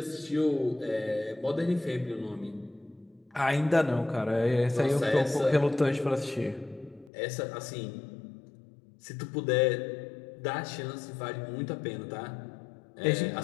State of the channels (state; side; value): drops out; right; at 7.1 s